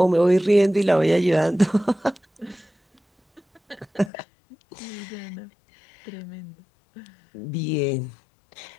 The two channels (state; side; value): drops out; right; at 4.1 s